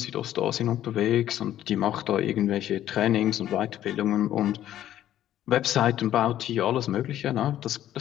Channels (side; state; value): right; quieter; 12.2 dB